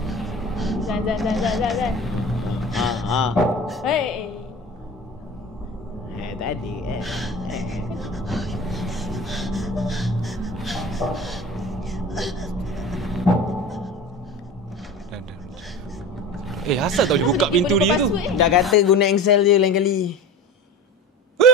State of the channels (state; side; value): normal; both; correlation 0.33